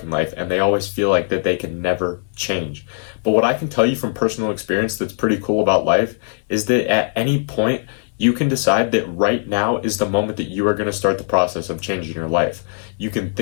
in life and they always feel like that they can never change. But what I can tell you from personal experience that's pretty cool about life is that at any point, you can decide that right now is the moment that you are going to start the process of changing your life. You can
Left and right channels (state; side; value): silent; right; digital silence